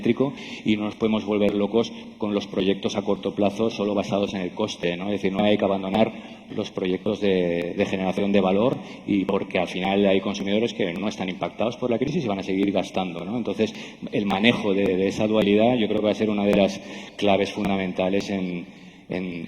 y no nos podemos volver locos con los proyectos a corto plazo solo basados en el coste, ¿no? Es decir, no hay que abandonar los proyectos de generación de valor, y porque al final hay consumidores que no están impactados por la crisis y van a seguir gastando, ¿no? Entonces, el manejo de esa dualidad yo creo que va a ser una de las claves fundamentales en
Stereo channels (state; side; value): identical; both; correlation 1.00